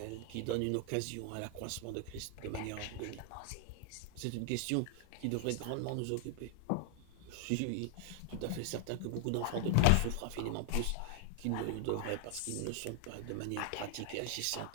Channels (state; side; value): different; both; correlation 0.00